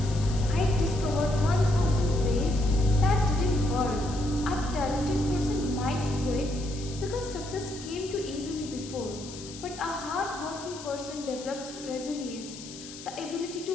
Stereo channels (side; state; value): left; noise; hiss, 14 dB below the sound